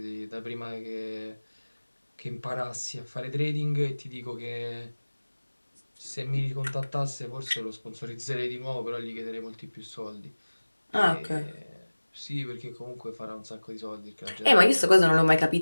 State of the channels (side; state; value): both; inverted; correlation -1.00